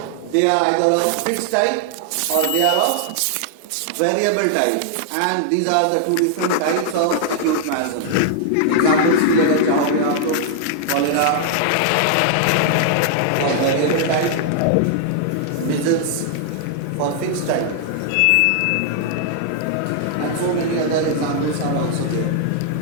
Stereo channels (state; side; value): different; both; correlation 0.00